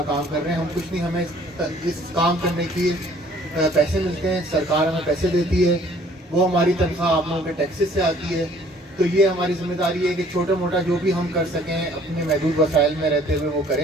کام کر رہے ہیں، ہم کچھ نہیں، ہمیں اس کام کرنے کی پیسے ملتے ہیں، سرکار ہمیں پیسے دیتی ہے، وہ ہماری تنخواہ آپ لوگوں کے ٹیکسز سے آتی ہے، تو یہ ہماری ذمہ داری ہے کہ چھوٹا موٹا جو بھی ہم کر سکیں اپنے محدود وسائل میں رہتے ہوئے وہ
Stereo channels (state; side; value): normal; both; correlation 0.57